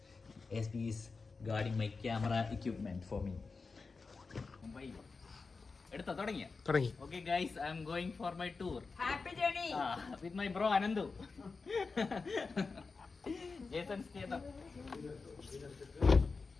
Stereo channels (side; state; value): right; quieter; 4.4 dB